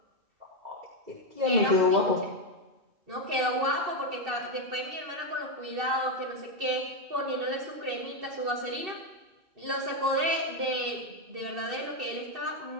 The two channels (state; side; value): late; left; 2.6 ms